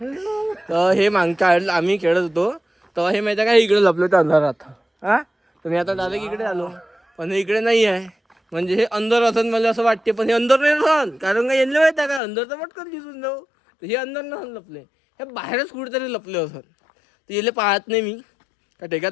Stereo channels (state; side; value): drops out; right; at 12.2 s